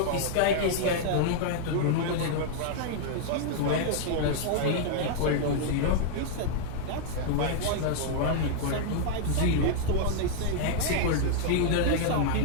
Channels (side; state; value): both; different; correlation -0.01